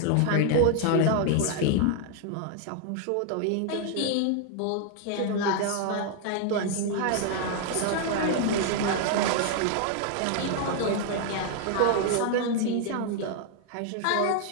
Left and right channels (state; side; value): different; both; correlation 0.00